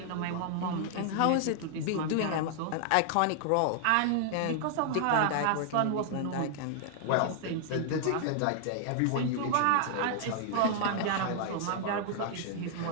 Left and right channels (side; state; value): both; different; correlation 0.00